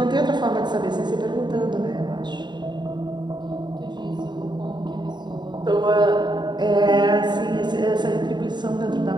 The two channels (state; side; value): late; left; 0.21 ms